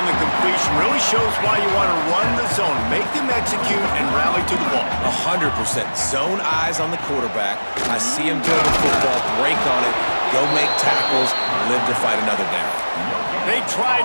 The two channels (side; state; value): both; inverted; correlation -1.00